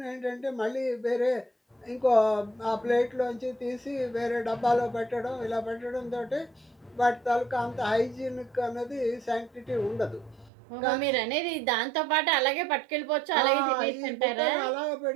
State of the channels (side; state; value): left; drops out; at 10.5 s